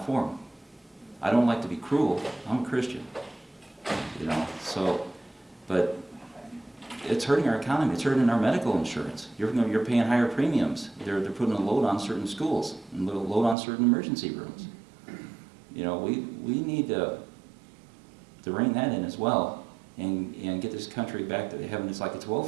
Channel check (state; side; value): drops out; left; at 13.6 s